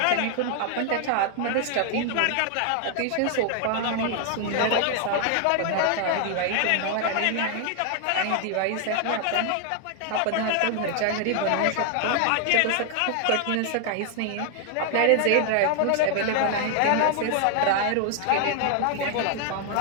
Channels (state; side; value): different; both; correlation 0.00